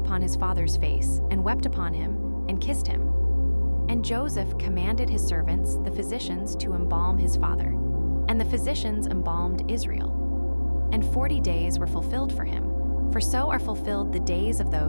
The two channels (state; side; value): inverted; both; correlation -1.00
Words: his father's face, and wept upon him, and kissed him. And Joseph commanded his servants, the physicians, to embalm his father. And the physicians embalmed Israel. And 40 days were fulfilled for him, for so are fulfilled the days of